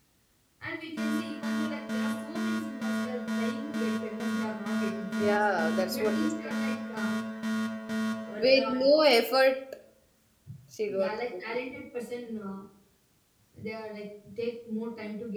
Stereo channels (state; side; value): identical; both; correlation 1.00